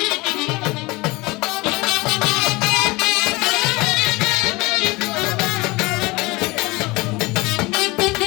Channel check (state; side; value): quieter; right; 23.3 dB